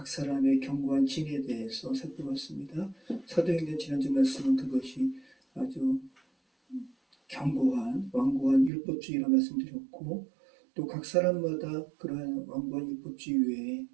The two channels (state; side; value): drops out; left; at 8.7 s